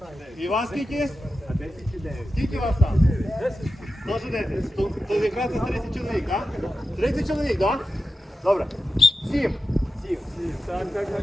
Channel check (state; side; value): normal; both; correlation 0.91